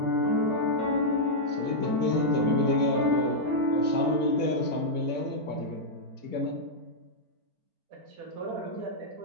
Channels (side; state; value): left; late; 4.4 ms